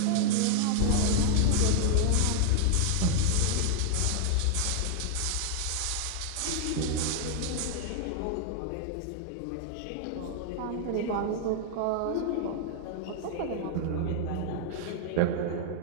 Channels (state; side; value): different; both; correlation 0.00